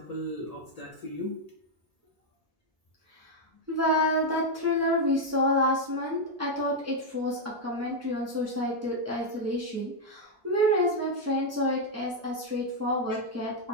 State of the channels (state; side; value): normal; both; correlation 0.00